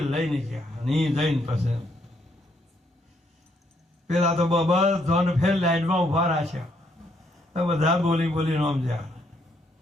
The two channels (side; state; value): both; normal; correlation 0.72